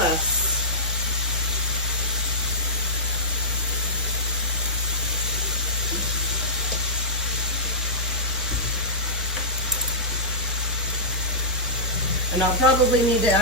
And I'll probably need to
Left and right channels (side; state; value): both; normal; correlation -0.17